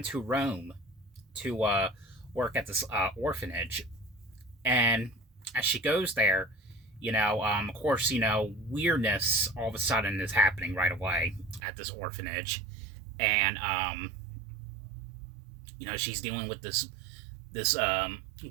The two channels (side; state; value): left; drops out; at 11.6 s